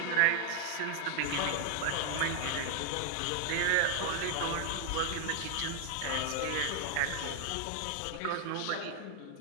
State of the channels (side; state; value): both; different; correlation 0.00